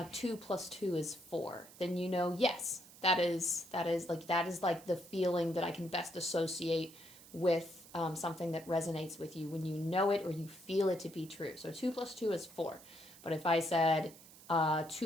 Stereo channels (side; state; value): right; noise; hiss, 20 dB below the sound